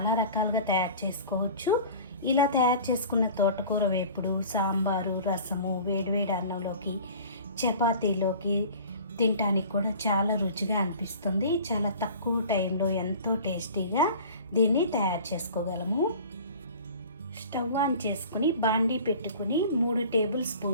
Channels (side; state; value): both; inverted; correlation -0.42